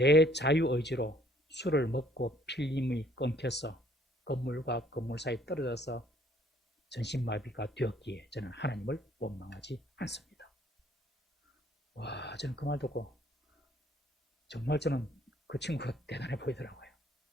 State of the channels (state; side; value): normal; both; correlation 0.62